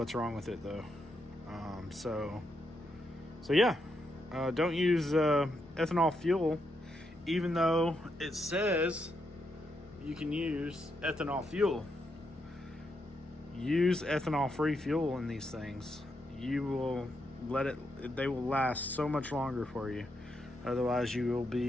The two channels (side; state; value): both; normal; correlation 0.81